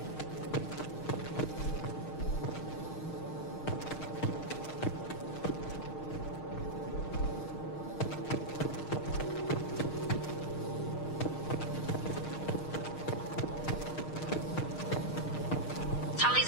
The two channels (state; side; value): late; right; 6.5 ms